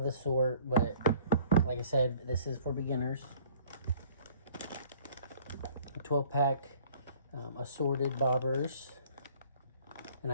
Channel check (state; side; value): inverted; both; correlation -0.54